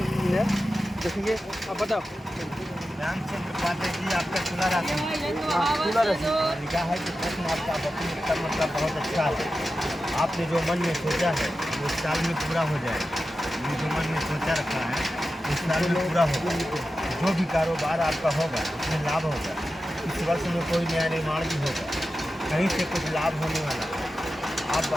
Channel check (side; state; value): both; normal; correlation 0.92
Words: देखेंगे। आप बताओ। रामचंद्र पात्र जी आपका खुला राशि लिखा है कि प्रश्न आपका मतलब बहुत अच्छा है। आपने जो मन में सोचा है वो इस साल में पूरा हो जाएगा। ये जो मन में सोचा रखा है इस साल में पूरा होगा। जो भी कारोबार आपका होगा उसमें लाभ होगा। इस वर्ष में कोई नया निर्माण भी होगा, कहीं से कुछ लाभ होने वाला है। आप